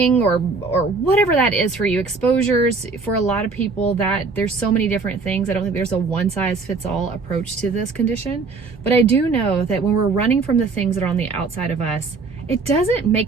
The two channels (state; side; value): quieter; left; 4.2 dB